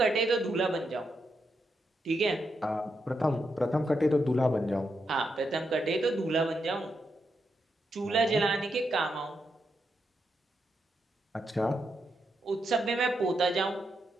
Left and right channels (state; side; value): normal; both; correlation 0.83